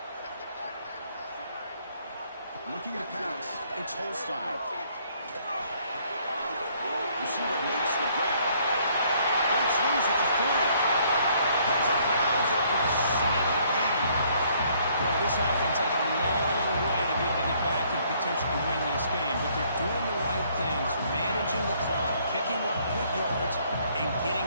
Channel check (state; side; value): inverted; both; correlation -0.65